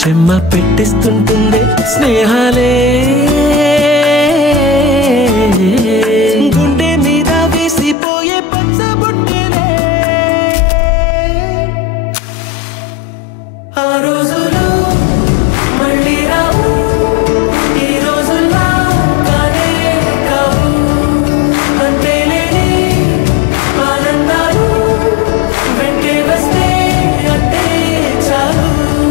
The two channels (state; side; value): drops out; right; at 8.0 s